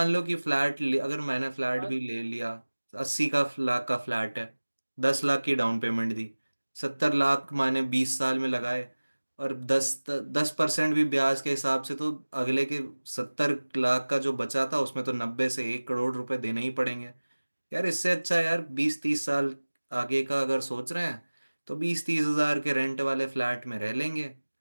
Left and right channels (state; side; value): inverted; both; correlation -1.00